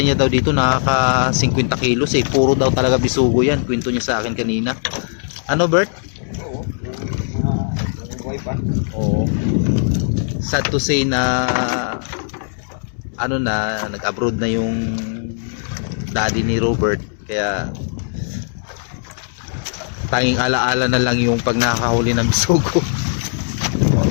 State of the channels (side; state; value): right; silent; digital silence